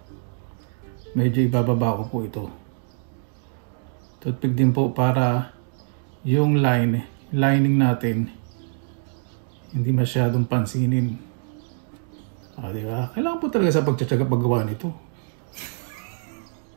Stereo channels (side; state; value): left; silent; digital silence